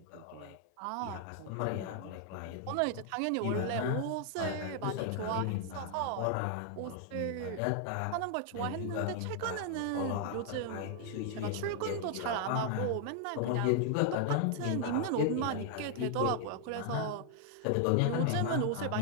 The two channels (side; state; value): both; different; correlation 0.00